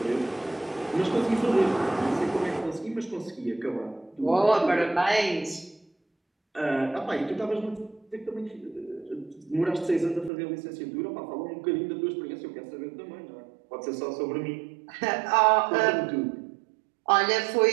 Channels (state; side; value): drops out; left; at 10.3 s